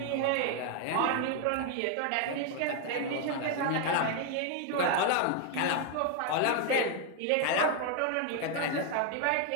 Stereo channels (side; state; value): both; different; correlation 0.01